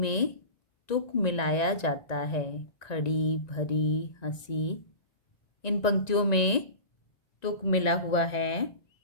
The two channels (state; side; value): late; right; 1.9 ms